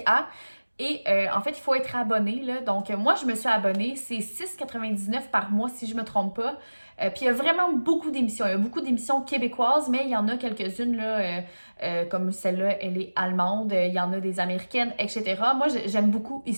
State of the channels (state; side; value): inverted; both; correlation -1.00